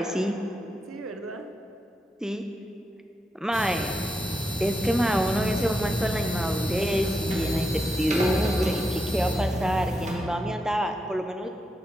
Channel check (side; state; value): both; normal; correlation 0.85